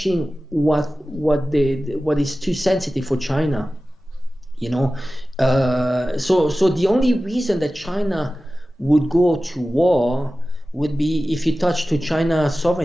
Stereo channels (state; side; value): normal; both; correlation 0.95